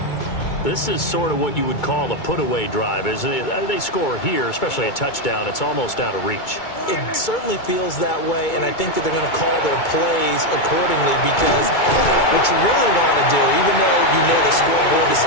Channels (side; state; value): right; late; 2.2 ms